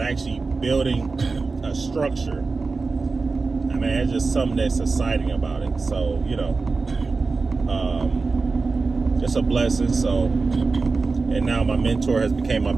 actually building a structure, I mean, it's just something that's exciting about it. So, you know, it's a blessing. So, and now my mentor has become my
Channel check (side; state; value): left; quieter; 4.1 dB